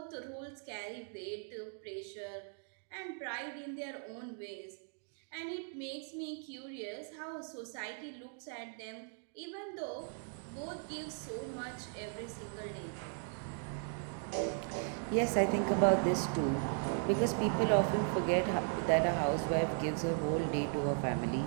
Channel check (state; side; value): silent; left; 53 dB below the other